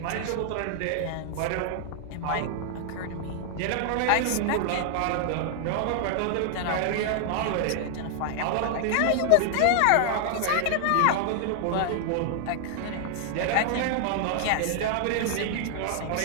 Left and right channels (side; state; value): both; different; correlation 0.00